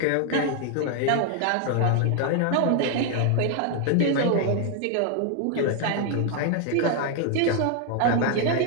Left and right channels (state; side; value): different; both; correlation 0.00